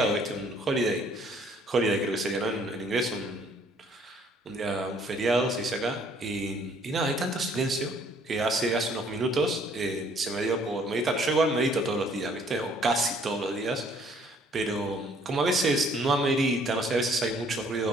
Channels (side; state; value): both; normal; correlation 0.61